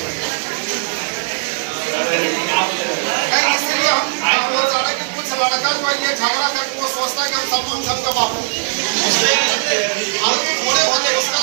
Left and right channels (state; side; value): silent; left; digital silence